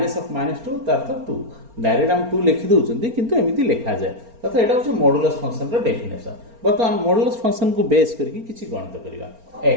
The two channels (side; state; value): left; late; 4.3 ms